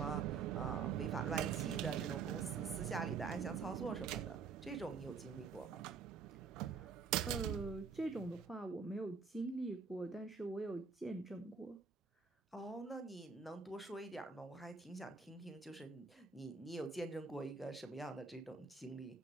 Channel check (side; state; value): left; quieter; 5.3 dB